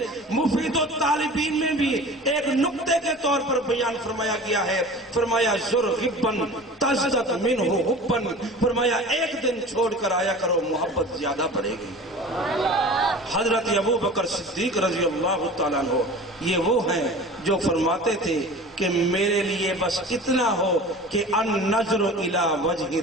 مفید الطالبین میں بھی ایک نقطے کے طور پر بیان فرمایا گیا ہے۔ فرمایا زر غبن تزدد منہ حبن، فرمایا ایک دن چھوڑ کر آیا کرو محبت زیادہ بڑھے گی۔ حضرت ابو بکر صدیق رضی اللہ تعالیٰ عنہ یہ وہ ہیں جو فرماتے تھے کہ میرے لیے بس اتنا ہو کہ النظر الی وجہ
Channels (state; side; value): normal; both; correlation 0.39